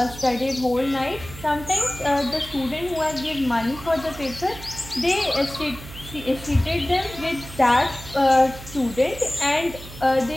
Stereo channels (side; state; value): right; noise; hum, 14 dB below the sound